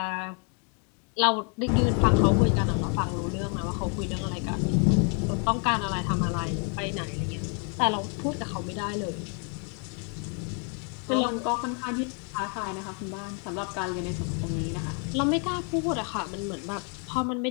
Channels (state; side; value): quieter; right; 39.5 dB